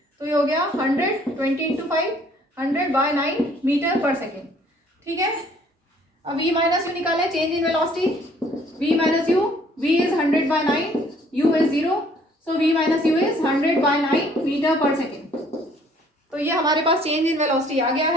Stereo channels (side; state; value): both; normal; correlation 0.60